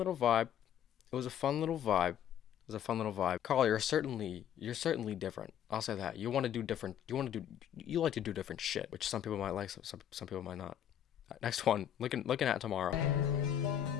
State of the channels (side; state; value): right; quieter; 10.0 dB